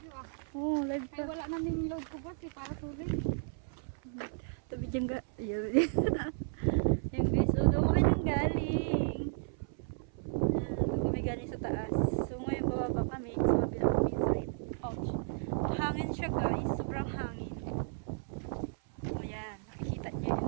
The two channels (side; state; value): left; silent; 55 dB below the other